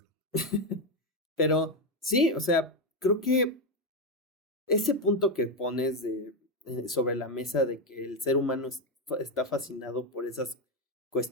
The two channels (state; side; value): normal; both; correlation 0.07